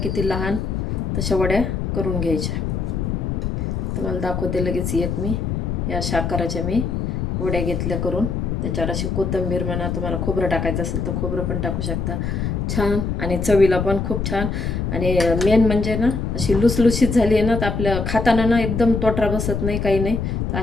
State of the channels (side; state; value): left; noise; rumble, 1 dB below the sound